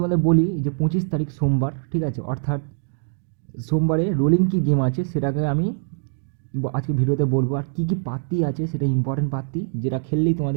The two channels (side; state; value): left; silent; digital silence